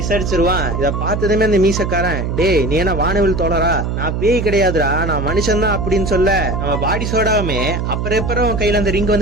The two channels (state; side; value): noise; right; hum, 2 dB below the sound